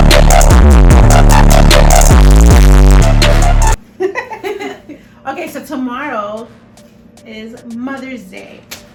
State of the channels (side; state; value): both; identical; correlation 1.00